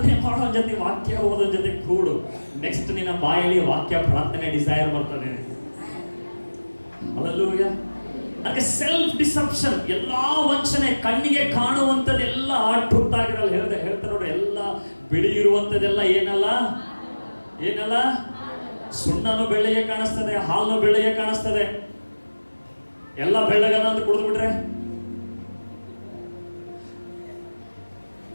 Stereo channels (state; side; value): inverted; both; correlation -1.00